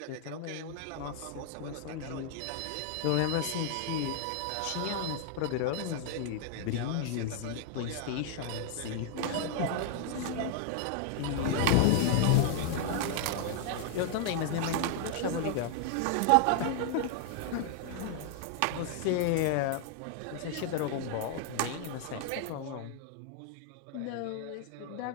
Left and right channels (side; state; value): both; different; correlation 0.00